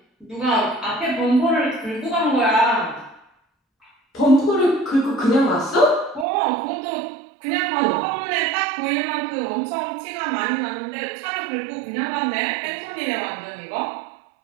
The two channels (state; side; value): drops out; left; at 6.2 s